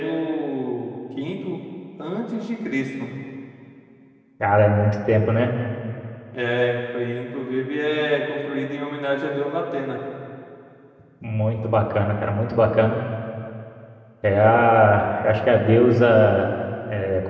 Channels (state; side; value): identical; both; correlation 1.00